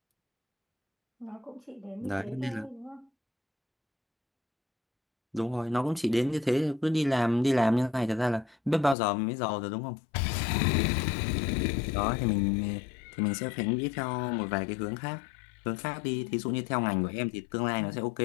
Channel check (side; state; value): right; drops out; at 9.0 s